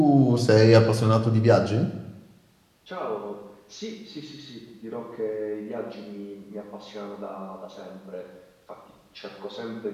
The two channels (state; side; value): identical; both; correlation 1.00